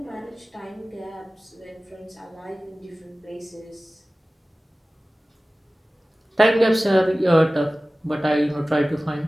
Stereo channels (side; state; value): both; normal; correlation 0.97